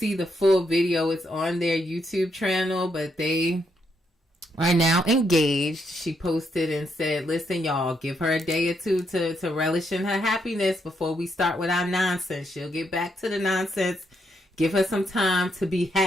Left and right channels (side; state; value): both; normal; correlation 0.77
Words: the full video, it's on their YouTube channel, but they are now engaged. She posted and said, listen, y'all, give her a day or two to relish in her happiness before we start with our nonsense. She'll get back to the nonsense. Give her some time to be